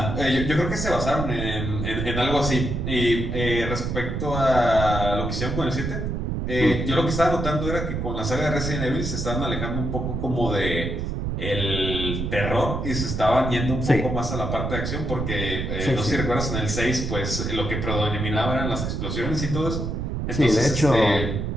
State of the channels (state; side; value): noise; right; rumble, 2 dB below the sound